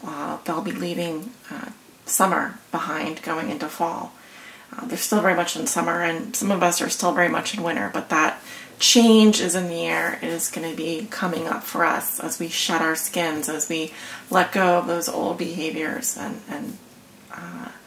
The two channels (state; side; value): identical; both; correlation 1.00